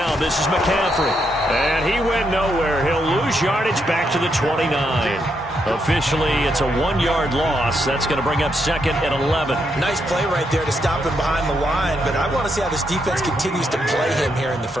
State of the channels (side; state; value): both; normal; correlation 0.79